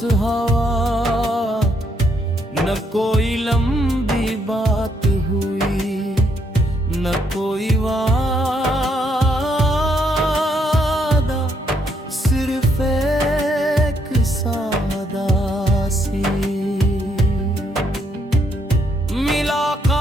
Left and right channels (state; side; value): normal; both; correlation 0.73